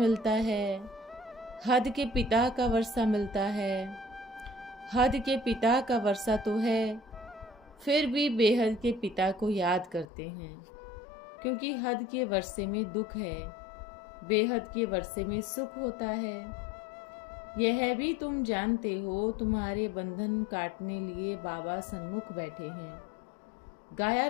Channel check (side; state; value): right; drops out; at 10.1 s